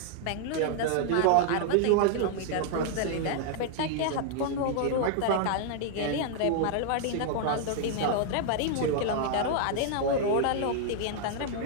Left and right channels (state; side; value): different; both; correlation -0.01